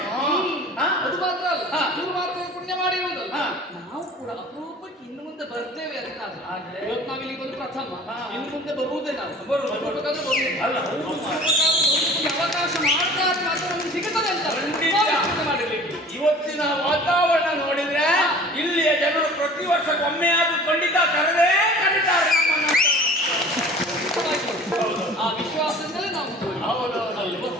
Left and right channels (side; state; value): both; normal; correlation 0.44